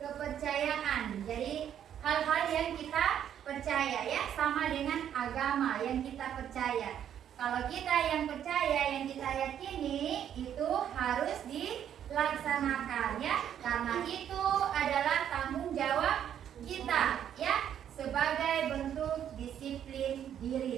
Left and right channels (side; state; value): left; quieter; 9.7 dB